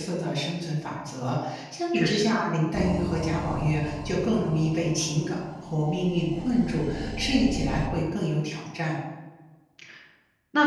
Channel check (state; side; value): identical; both; correlation 1.00